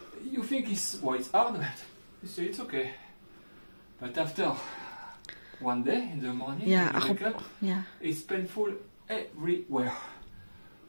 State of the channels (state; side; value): inverted; both; correlation -1.00